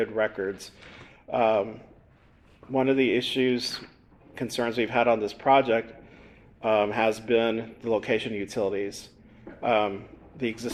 records. One of the concerns we've had on this project has been the location of utilities. The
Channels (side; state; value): both; identical; correlation 1.00